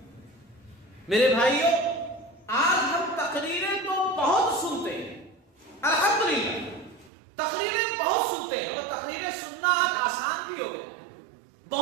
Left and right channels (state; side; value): drops out; left; at 7.1 s